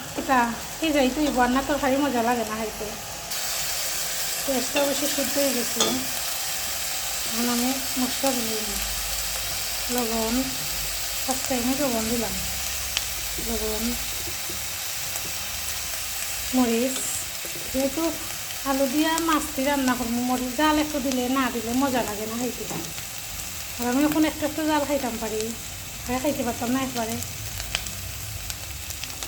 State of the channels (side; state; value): both; identical; correlation 1.00